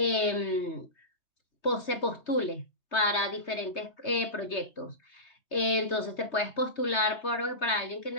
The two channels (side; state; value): right; late; 3.2 ms